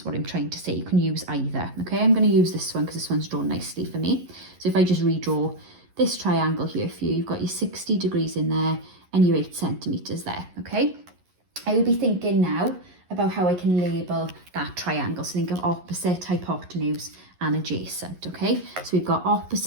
what I'm trying to say. You can use either. Okay, I'm going to use this one because this one's drawn nicely for me. So if I just redraw this triangle here for you, you've got your 60 degrees in there and your 8 centimetres there. Okay, I would be thinking now about how I can label that triangle. So think of opposite, hypotenuse and adjacent. Okay, so we've got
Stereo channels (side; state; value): left; late; 11 ms